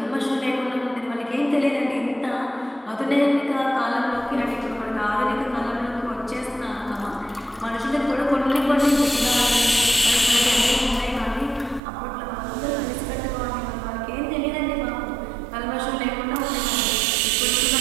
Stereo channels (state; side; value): drops out; left; at 11.8 s